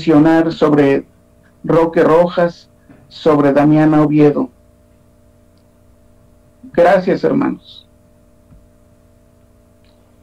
sobre Roque Rojas, sobre Damiana Oviedo. Gracias, hermanos.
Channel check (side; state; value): both; identical; correlation 1.00